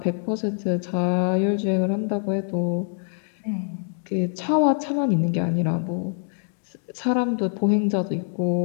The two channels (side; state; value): right; silent; 59 dB below the other